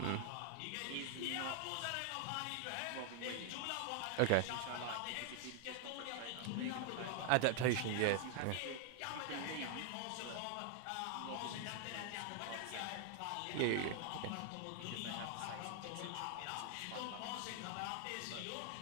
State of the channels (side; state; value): both; different; correlation 0.00